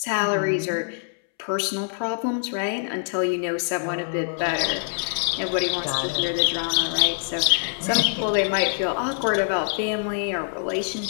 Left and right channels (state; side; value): silent; right; 62 dB below the other